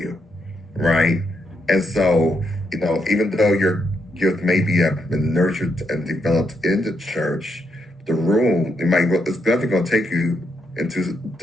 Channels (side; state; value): both; normal; correlation 0.79